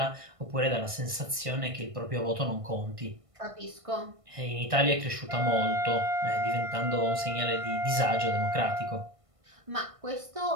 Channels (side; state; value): left; late; 1.5 ms